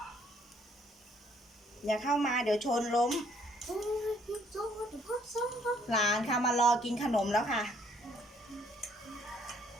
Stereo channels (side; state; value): both; normal; correlation 0.65